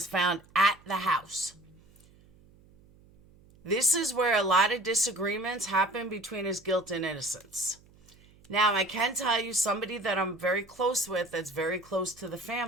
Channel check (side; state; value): right; noise; hum, 27 dB below the sound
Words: found at the house. This is where a lot of disagreements happen between his guilt and innocence. Now, I can tell you somebody that I'm very close with, that's very close to the